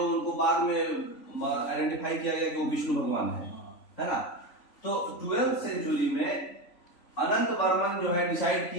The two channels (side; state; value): right; late; 3.5 ms